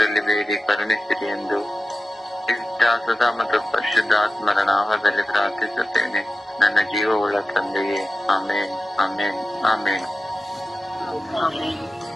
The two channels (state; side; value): normal; both; correlation 0.93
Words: ಬೇಡಿ ಕರುಣಿಸಿರಿ ಎಂದು ಸದಾ ಮತ್ತು ಪರಿಶುದ್ಧಾತ್ಮರ ನಾಮದಲ್ಲಿ ಪ್ರಾರ್ಥಿಸುತ್ತೇನೆ, ನನ್ನ ಜೀವವುಳ್ಳ ತಂದೆಯೇ. ಆಮೇನ್, ಆಮೇನ್, ಆಮೇನ್.